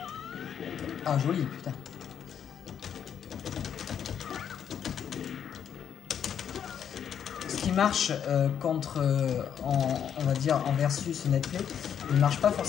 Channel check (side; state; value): right; quieter; 8.6 dB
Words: Ah, joli, putain. Ce qui marche contre, on va dire, en versus netplay, il ne marche pas